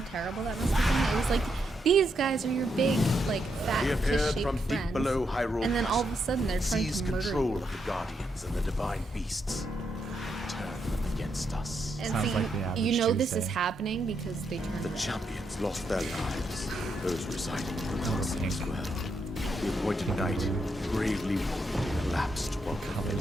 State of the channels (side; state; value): both; normal; correlation 0.80